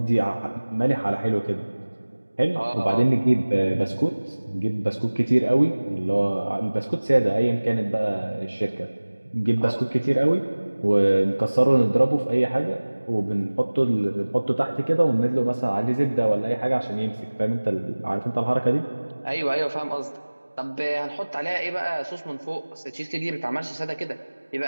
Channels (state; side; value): inverted; both; correlation -1.00